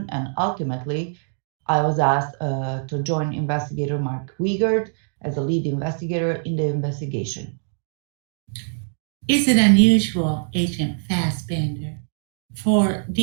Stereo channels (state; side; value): silent; left; digital silence